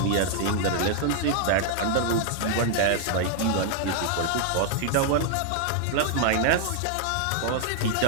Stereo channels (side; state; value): both; different; correlation 0.00